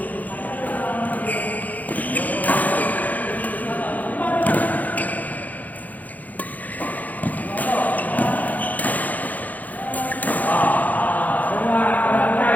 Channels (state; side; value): late; right; 0.080 ms